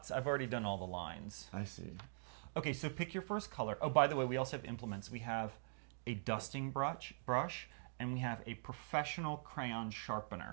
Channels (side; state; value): left; silent; digital silence